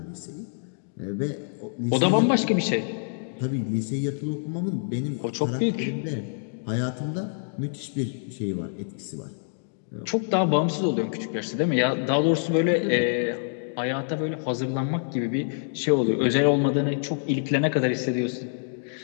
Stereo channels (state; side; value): silent; right; digital silence